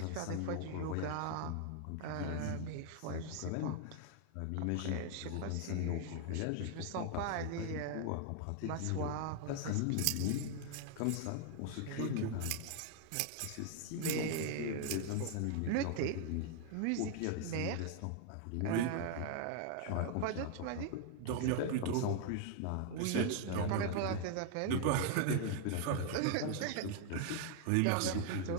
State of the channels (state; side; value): different; both; correlation 0.00